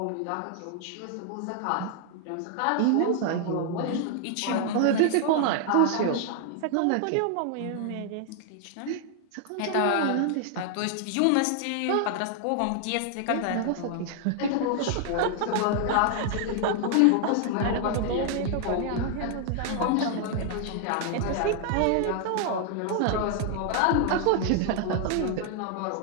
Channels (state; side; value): different; both; correlation 0.00